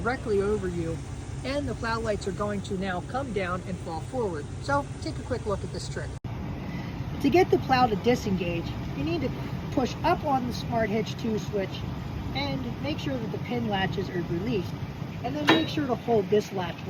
over you and the plow lights are going to now come down and fall forward. So take a quick look at this trick. To get the plow to disengage, you need to push up on the Smart Hitch 2 switch and make sure that the pin latches are released, and then make sure to hold this latch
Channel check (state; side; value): identical; both; correlation 1.00